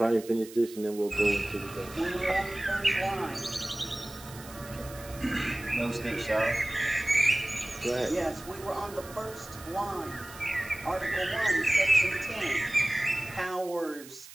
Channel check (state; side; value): noise; right; hiss, 17 dB below the sound